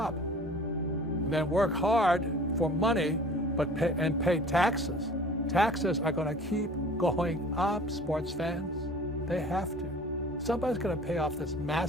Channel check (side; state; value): both; normal; correlation 0.46